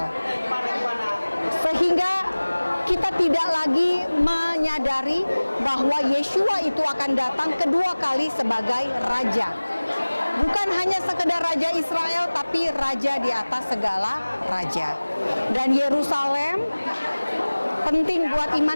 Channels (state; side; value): inverted; both; correlation -1.00